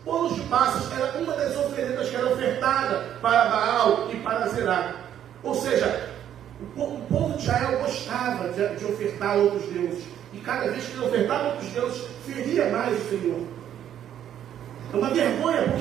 Bolos de passas era uma das oferendas que era ofertada para Baal e para Zerá. Ou seja, o povo de Israel gostava de ofertar a outros deuses. E cada vez que ele ofertava a outros deuses, feria mais o Senhor. É uma vergonha,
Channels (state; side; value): quieter; left; 10.3 dB